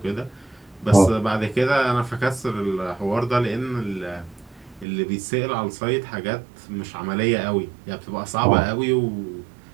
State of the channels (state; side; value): drops out; left; at 4.9 s